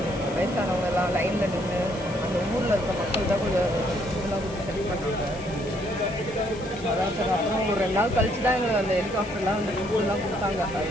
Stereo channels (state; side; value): noise; left; hiss, 19 dB below the sound